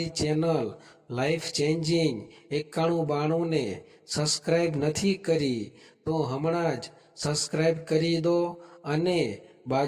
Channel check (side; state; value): both; identical; correlation 1.00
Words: ચેનલ લાઈફ ચેન્જિંગ 9192 ને સબસ્ક્રાઈબ નથી કરી, તો હમણાં જ સબસ્ક્રાઈબ કરી દો અને